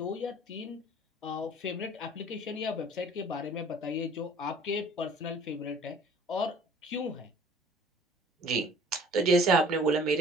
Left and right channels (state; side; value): normal; both; correlation 0.51